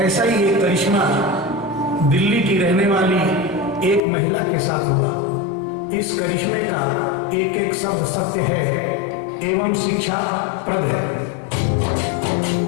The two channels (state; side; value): drops out; right; at 4.0 s